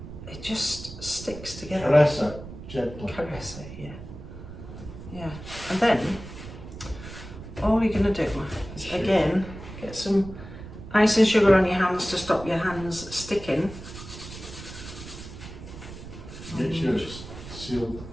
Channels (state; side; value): noise; right; rumble, 13 dB below the sound